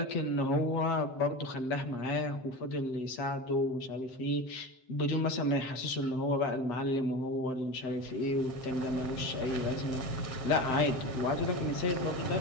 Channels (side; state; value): right; late; 7.7 ms